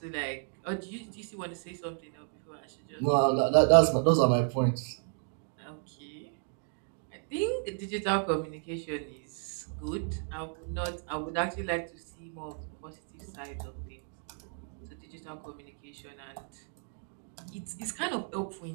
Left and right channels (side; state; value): left; silent; 56 dB below the other